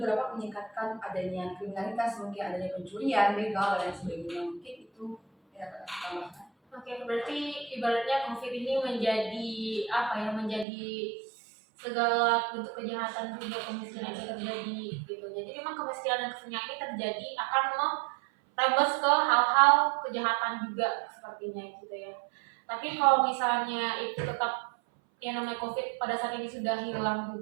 dapat meningkatkan adanya kriminalitas, mungkin adanya pencurian, begal, dan lain sebagainya. Mungkin itu ya tambahkan. Oke, berarti ibaratnya COVID ini menjadi segala bentuk kejahatan juga kemiskinan itu terjadi gitu. Jadi memang kemiskinan dan kesenjangan ini terjadi akan merembes ke hal-hal kejahatan juga sepertinya gitu ya. Tapi kalau misalnya itu tetap yang namanya COVID pada saat ini sudah hilang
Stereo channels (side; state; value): left; drops out; at 10.7 s